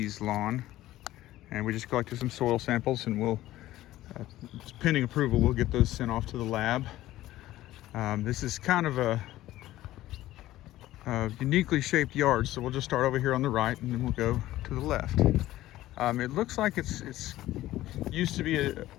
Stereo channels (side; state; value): right; quieter; 15.2 dB